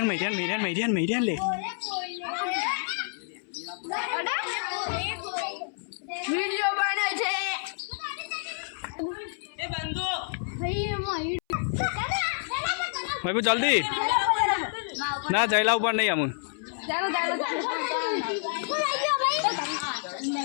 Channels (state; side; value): silent; right; 59 dB below the other